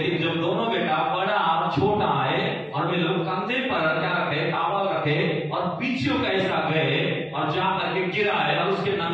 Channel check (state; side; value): identical; both; correlation 1.00